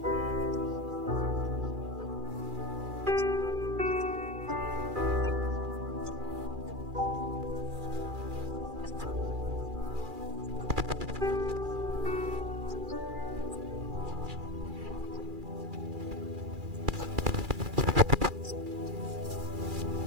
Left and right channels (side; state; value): left; late; 2.4 ms